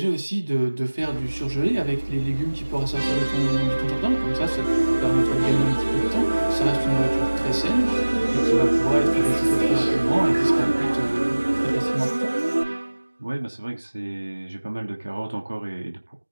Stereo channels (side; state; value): both; inverted; correlation -1.00